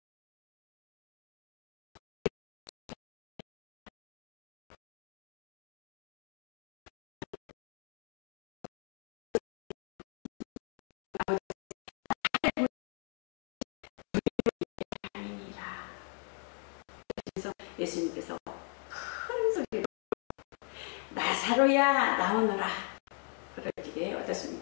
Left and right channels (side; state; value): right; quieter; 32.2 dB